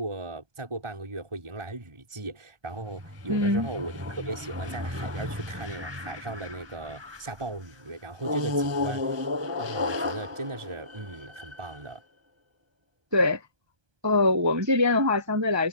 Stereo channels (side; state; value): left; late; 1.2 ms